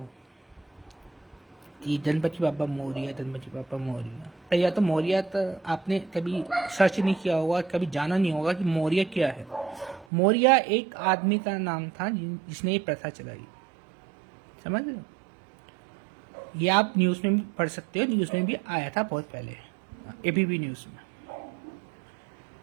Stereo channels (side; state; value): left; drops out; at 10.1 s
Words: कि गणपति बाबा मोरिया, गणपति बाबा मोरिया, तो या तो मोरिया तो आपने कभी सर्च नहीं किया होगा, कभी जाना नहीं होगा कि मोरिया क्या है। मोरिया एक आदमी का नाम था जिसने ये प्रथा चलाई, समझ रहे हो। ये आप न्यूज में भी पढ़ सकते हो, न्यूज में भी आया था बहुत पहले, एबीपी न्यूज में।